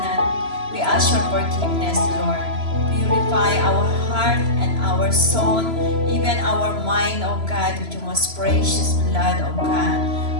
we ask your forgiveness, Lord. Purify our heart and our soul, even our mind, O God, with your most precious blood, O God.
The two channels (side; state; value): left; late; 3.0 ms